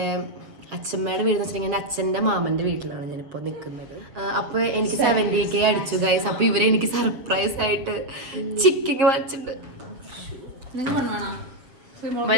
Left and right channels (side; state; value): left; late; 7.1 ms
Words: അച്ഛമ്മയുടെ വീട് എന്ന് വെച്ചിട്ടുണ്ടെങ്കിൽ എൻ്റെ അച്ഛൻ്റെ മാമൻ്റെ വീട്ടിലാണ് ഞാനിപ്പോൾ നിൽക്കുന്നത്. അപ്പോൾ എനിക്ക് 70K അടിച്ചു ഗൈസ്. അപ്പോൾ ഇവരെ എനിക്ക് സർപ്രൈസ് ആയിട്ട് ചിക്കൻ വാങ്ങിച്ചിട്ടുണ്ട്.